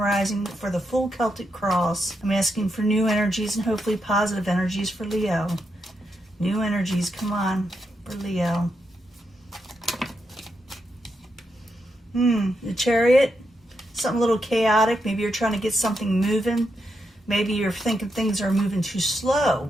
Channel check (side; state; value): both; normal; correlation 0.83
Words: for the full Celtic cross. I'm asking for new energies and hopefully positive energies for Leo. New energies, come on, for Leo. The Chariot, something a little chaotic. Maybe you're trying to get something moving. Maybe you're thinking things are moving too